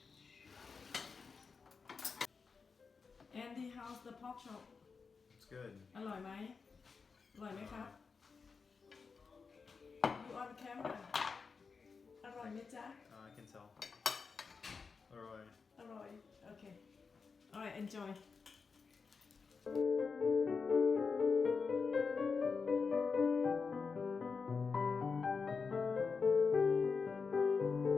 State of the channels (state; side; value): quieter; right; 5.1 dB